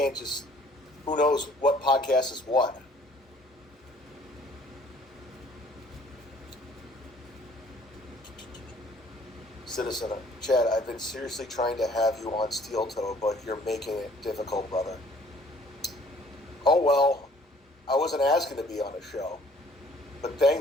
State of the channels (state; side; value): normal; both; correlation 0.57